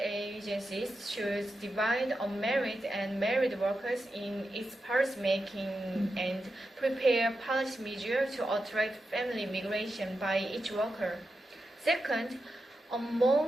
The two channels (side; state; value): both; normal; correlation 0.89